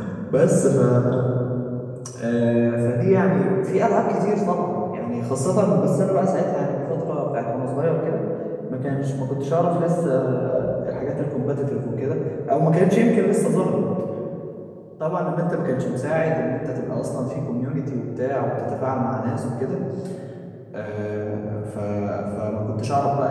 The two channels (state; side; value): identical; both; correlation 1.00